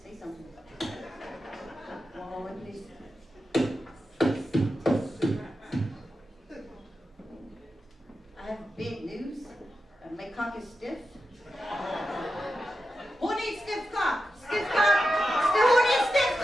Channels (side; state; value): both; normal; correlation 0.90